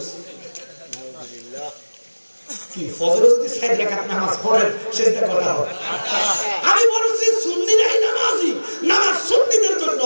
কি ফজরে যদি 4 রাকাত নামাজ পড়েন সেটা কথা হবে। আমি বলছি সুন্নিরাই নামাজি, নামাজ সুন্নিদের জন্য,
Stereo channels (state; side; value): inverted; both; correlation -1.00